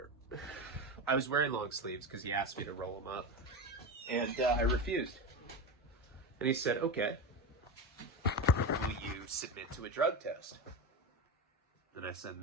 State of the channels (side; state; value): both; normal; correlation 0.20